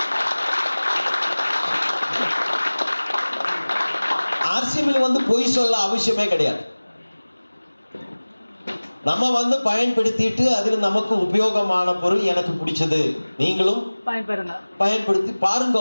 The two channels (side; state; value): both; inverted; correlation -1.00